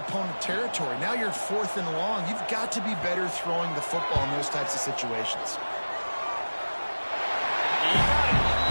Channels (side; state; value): both; inverted; correlation -1.00